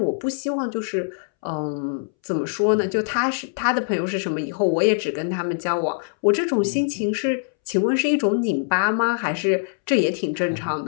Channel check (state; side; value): silent; right; 63 dB below the other